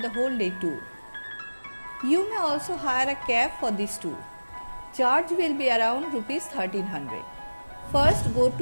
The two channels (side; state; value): both; inverted; correlation -1.00